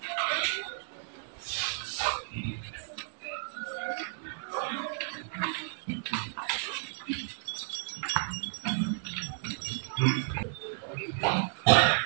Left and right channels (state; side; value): silent; left; digital silence